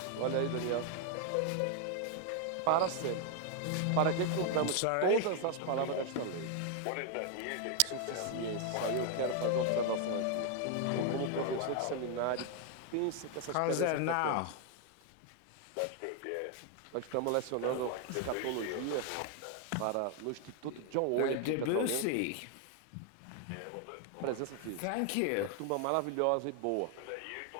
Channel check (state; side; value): different; both; correlation 0.00